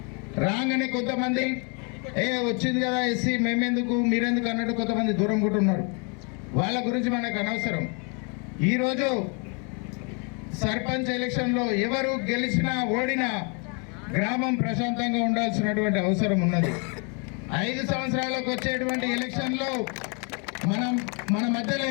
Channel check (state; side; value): quieter; right; 35.8 dB